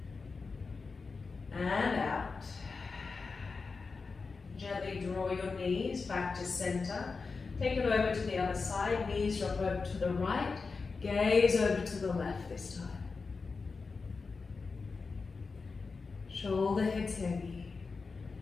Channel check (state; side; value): quieter; right; 4.5 dB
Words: and out. Gently draw your knees back to center. Take it over to the other side. Knees drop over to the right. Gaze over to the left this time. Shoulder heads heavy.